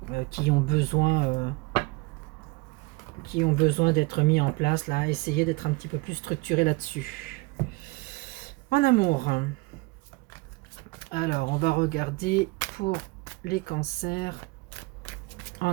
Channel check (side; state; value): left; quieter; 24.3 dB